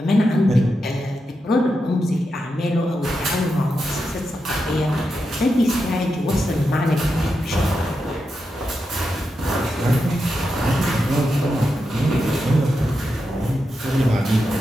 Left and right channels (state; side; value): normal; both; correlation 0.87